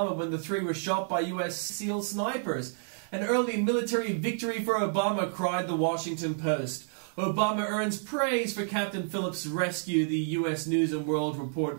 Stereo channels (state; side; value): silent; left; digital silence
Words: when the 3 were shot by U.S. SEAL snipers. An early military victory for Obama, cried the Washington Post. Obama earns praise for Captain Phillips' rescue, the U.S. News and World